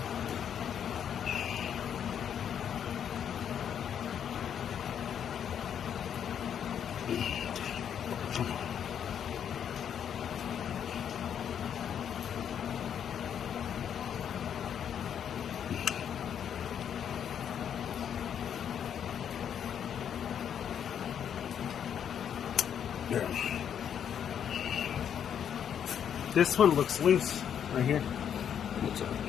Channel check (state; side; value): quieter; right; 8.7 dB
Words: This one looks loose right here. What's